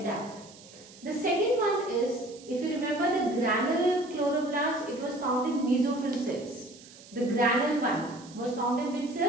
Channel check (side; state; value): right; noise; hiss, 21 dB below the sound